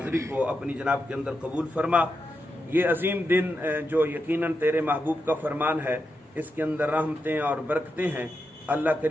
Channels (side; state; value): both; normal; correlation 0.87